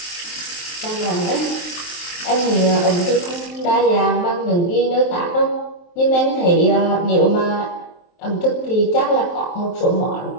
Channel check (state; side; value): late; right; 23 ms